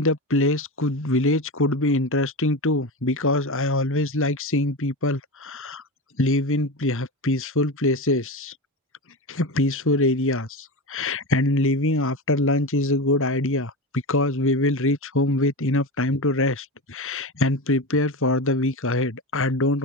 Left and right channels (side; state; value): both; normal; correlation 0.22